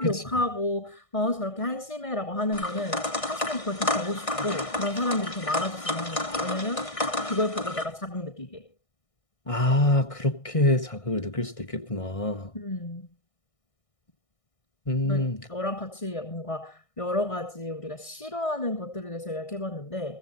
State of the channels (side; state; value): right; late; 1.6 ms